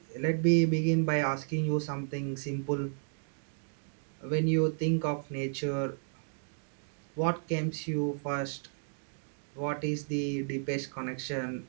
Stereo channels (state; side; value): silent; left; digital silence